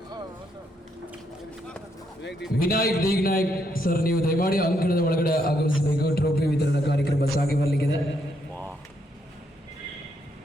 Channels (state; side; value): normal; both; correlation 0.76